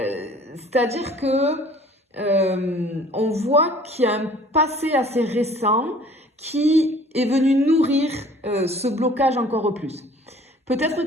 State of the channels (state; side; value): normal; both; correlation 0.51